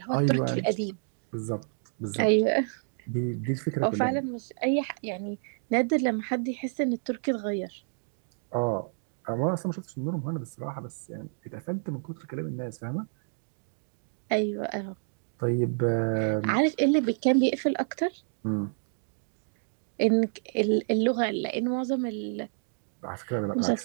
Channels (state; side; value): silent; left; digital silence